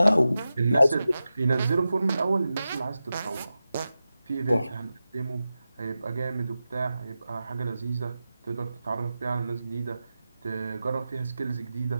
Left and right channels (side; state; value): both; inverted; correlation -0.93